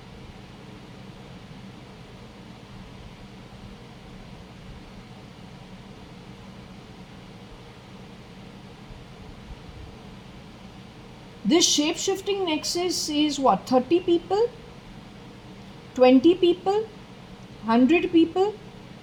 This shape-shifting nexus is what? 30 people? 20 people? 100 people?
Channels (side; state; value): both; identical; correlation 1.00